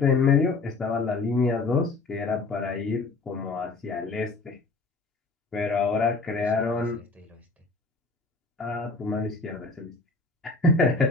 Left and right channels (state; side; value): quieter; right; 3.8 dB